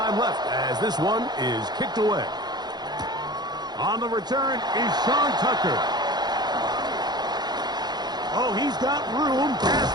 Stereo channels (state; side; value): late; left; 0.20 ms